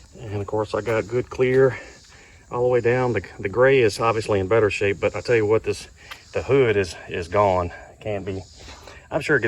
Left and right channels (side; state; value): both; identical; correlation 1.00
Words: And of course, I got good clear all the way down. The gray is obviously in better shape, but I tell you what, the hood is gone. It can't be. I'm sure it